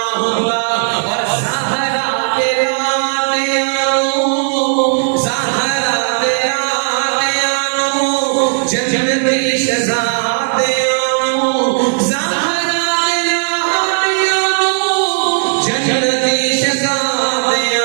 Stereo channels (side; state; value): left; silent; digital silence